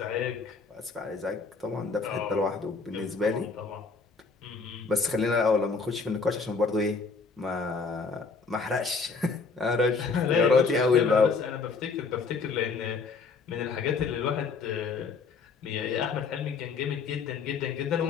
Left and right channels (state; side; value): quieter; right; 4.7 dB